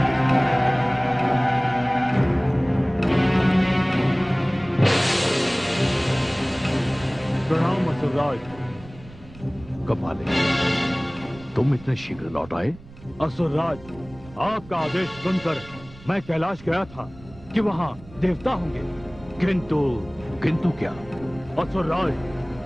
प्रणाम असुरराज। कपाले, तुम इतने शीघ्र लौट आए? असुरराज, आपका आदेश सुनकर मैं कैलाश गया था कि वहाँ देवता होंगे, किंतु क्या? असुरराज,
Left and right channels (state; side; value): noise; right; rumble, 20 dB below the sound